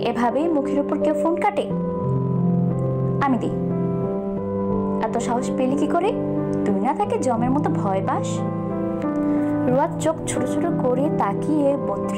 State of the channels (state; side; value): identical; both; correlation 1.00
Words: এভাবেই মুখের উপর কেউ ফোন কাটে? আমি দিই। এত সাহস পেলি কি করে? তুই না তাকে জমের মতো ভয় পাস? রুয়াত চোখ ছোট ছোট করে তাকিয়ে